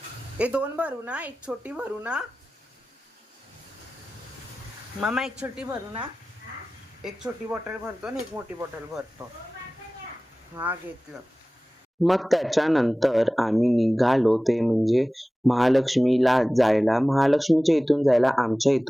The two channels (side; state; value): both; normal; correlation 0.97